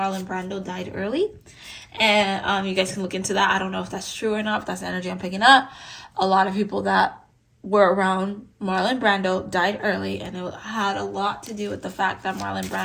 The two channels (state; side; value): identical; both; correlation 1.00